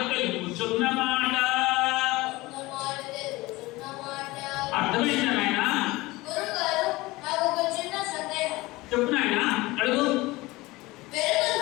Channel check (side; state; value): right; quieter; 20.8 dB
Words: తెలుపుచున్న మాట. ఉన్న మాట తెలుసున్న మాట. అర్థమైందా నాయన? గురుగారు, నాకు ఒక చిన్న సందేహం. చెప్పు నాయన, అడుగు.